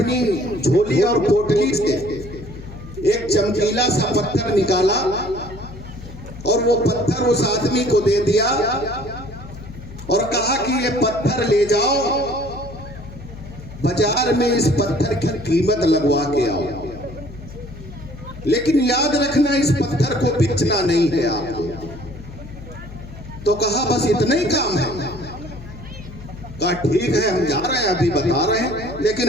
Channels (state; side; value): noise; left; hum, 14 dB below the sound